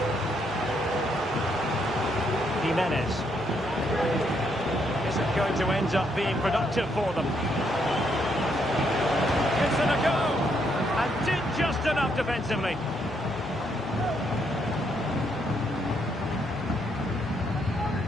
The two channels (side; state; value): both; normal; correlation 0.74